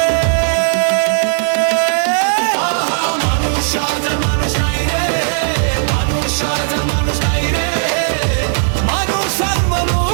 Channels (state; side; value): silent; left; digital silence